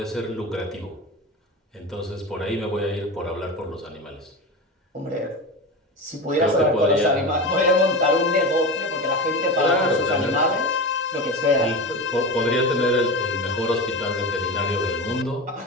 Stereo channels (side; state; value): both; normal; correlation 0.24